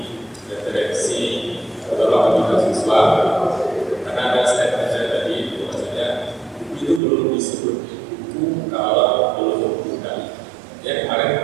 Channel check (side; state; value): left; drops out; at 7.0 s